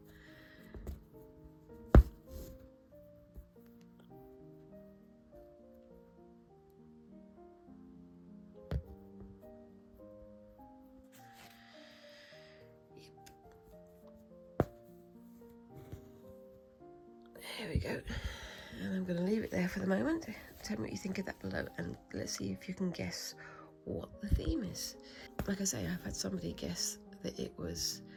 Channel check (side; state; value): both; identical; correlation 1.00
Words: There we go, and I'm going to leave it there for the moment. Tell me what you think of that below, and let's see if you can guess what the theme is. Like I say, I've had somebody guess that it was